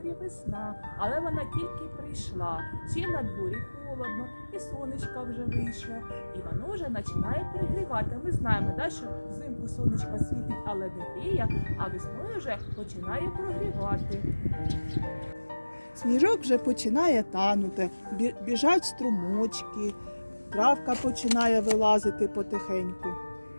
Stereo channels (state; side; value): inverted; both; correlation -1.00